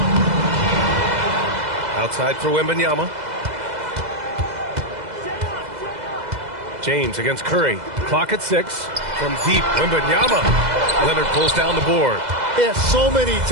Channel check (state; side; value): late; left; 2.0 ms